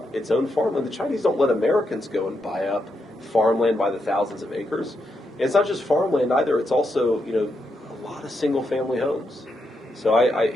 its own farmland. The Chinese don't let Americans go and buy up farmland by the thousands of acres. And it's not just farmland either. It's also, a lot of single-family homes. So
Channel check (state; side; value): normal; both; correlation 0.82